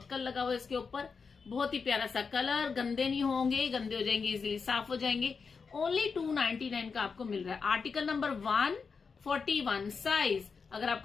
लगा हुआ है इसके ऊपर, बहुत ही प्यारा सा कलर, गंदे नहीं होंगे, गंदे हो जाएंगे इजीली साफ हो जाएंगे। ओनली 299 का आपको मिल रहा है। आर्टिकल नंबर 141 साइज, अगर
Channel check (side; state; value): right; quieter; 5.3 dB